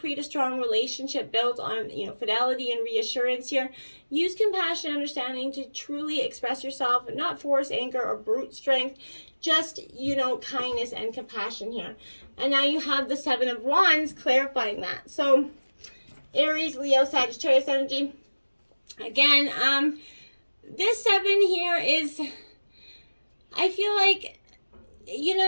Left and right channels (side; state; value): both; inverted; correlation -1.00